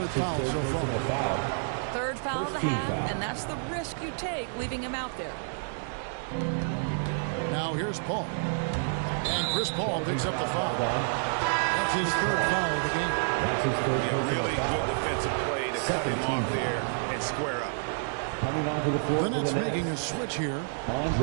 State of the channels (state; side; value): silent; left; digital silence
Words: foul so far. Third foul of the half, and that's the risk you take leaving him out there. Now here's Paul. And Chris Paul picks up the foul. That's his 3rd foul of the game. That's his 3rd. Yeah, really good defensive play to cut him off there and square up. Coming onto the floor. The Nets making a switch here.